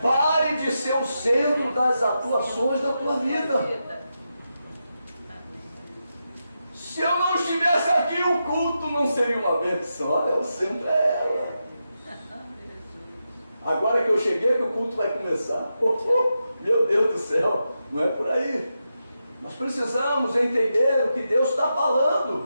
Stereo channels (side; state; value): both; inverted; correlation -0.88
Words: Pare de ser o centro das atuações da tua vida. Se eu não estivesse aqui, o culto não seria uma bênção. Olha, o centro é ela. Agora que eu cheguei, que o culto vai começar. Meu Deus do céu, não é por aí. Nós precisamos entender o que Deus está